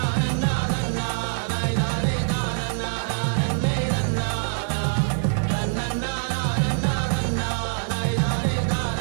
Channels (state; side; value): silent; left; digital silence